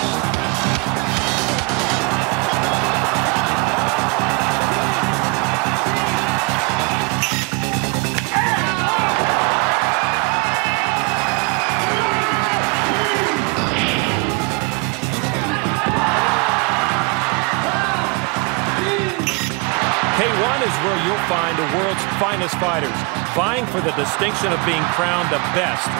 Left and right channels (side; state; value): left; quieter; 29.5 dB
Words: K1 is where you'll find the world's finest fighters, vying for the distinction of being crowned the best